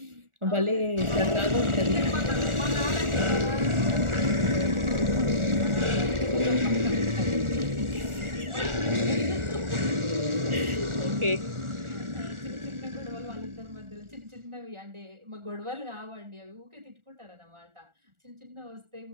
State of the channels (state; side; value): late; left; 1.4 ms